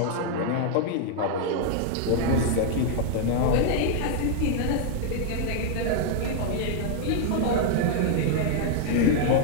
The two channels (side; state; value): both; different; correlation 0.00